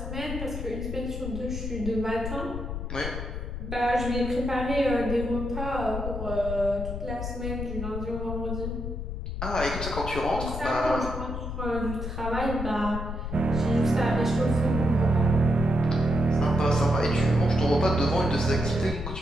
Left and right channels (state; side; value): noise; left; rumble, 5 dB below the sound